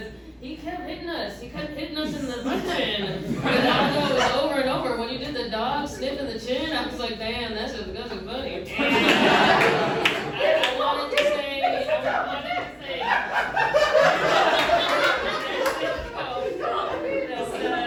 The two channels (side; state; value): both; identical; correlation 1.00